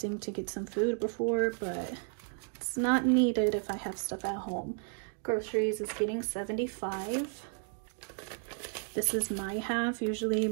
to get some food before, but it's not needed if I have stuff at home. Groceries is getting $75. This is my half. Usually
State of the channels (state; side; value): silent; left; 56 dB below the other